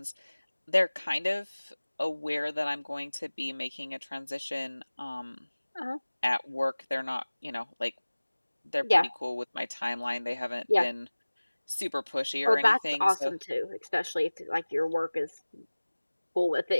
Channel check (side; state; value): both; inverted; correlation -1.00